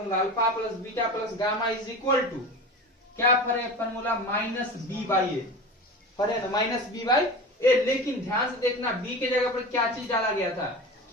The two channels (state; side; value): normal; both; correlation 0.31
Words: alpha plus beta plus gamma is equal to क्या पढ़े formula? Minus B by A पढ़े ना, माइनस बी बाई ए। लेकिन ध्यान से देखना, बी के जगह पर क्या चीज डाला गया था?